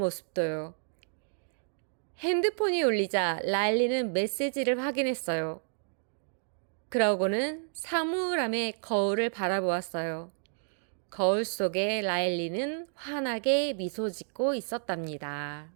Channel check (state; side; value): silent; left; digital silence